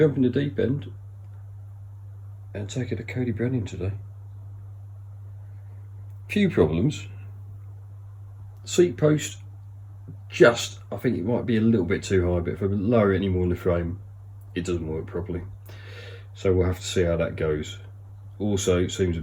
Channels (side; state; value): both; identical; correlation 1.00